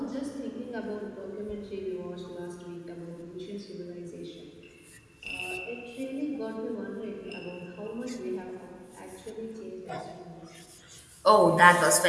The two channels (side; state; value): both; identical; correlation 1.00